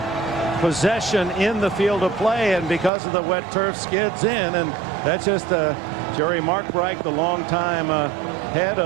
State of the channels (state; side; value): drops out; left; at 2.9 s